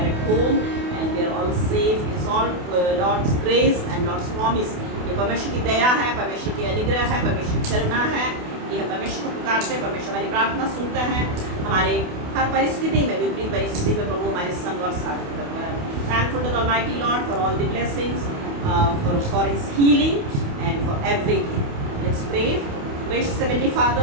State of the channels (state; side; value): late; left; 28 ms